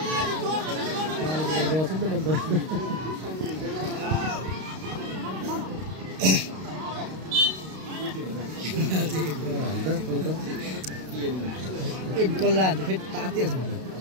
एक गोल लाग्छ फेरि तातिहाल्छ मलाई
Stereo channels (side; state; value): left; late; 32 ms